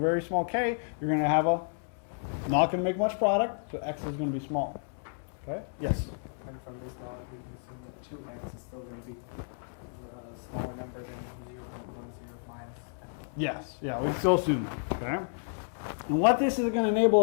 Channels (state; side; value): silent; right; 57 dB below the other